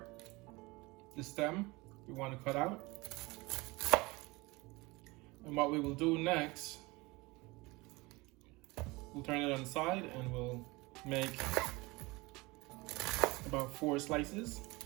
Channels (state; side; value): quieter; left; 23.5 dB